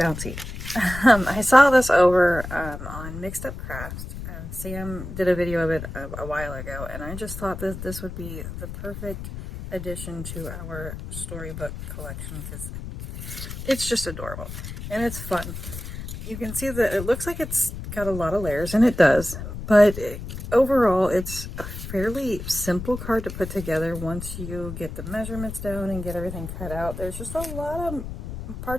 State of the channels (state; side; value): noise; left; rumble, 9 dB below the sound